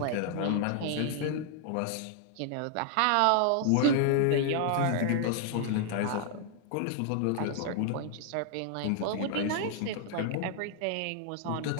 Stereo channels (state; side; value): different; both; correlation 0.00